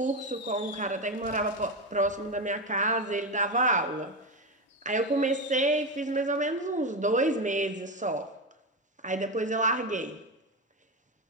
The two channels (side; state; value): both; normal; correlation 0.15